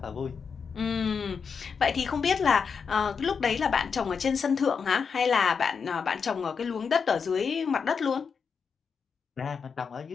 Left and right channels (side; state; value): right; quieter; 6.0 dB